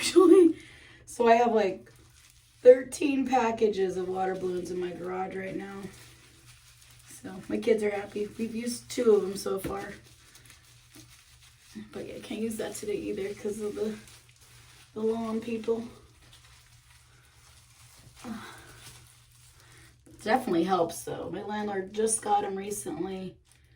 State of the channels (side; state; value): both; identical; correlation 1.00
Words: So I have like 13 packages of water balloons in my garage right now. So my kids are happy. We've used 2 of them so far. But yeah, I can't use that today either because of the lawn people. Definitely helps though. My landlord just got them recently.